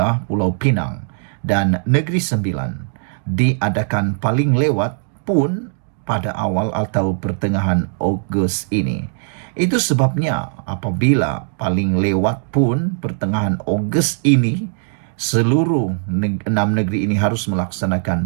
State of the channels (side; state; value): left; silent; digital silence